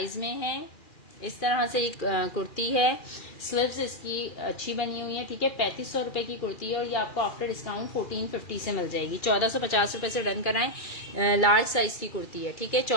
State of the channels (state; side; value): late; right; 2.4 ms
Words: में है, इस तरह से एक कुर्ती है। स्लीव्स इसकी अच्छी बनी हुई है। ठीक है, 3500 रुपए की कुर्ती है और ये आपको आफ्टर डिस्काउंट 1450 से मिल जाएगी। 1450 रुपए से डन कराएं। लार्ज साइज की कुर्ती है। ठीक है,